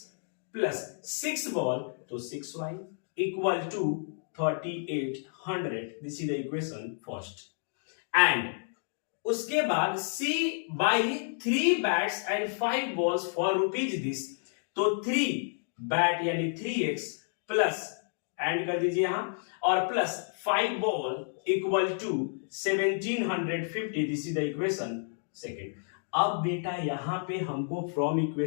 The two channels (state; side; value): silent; right; digital silence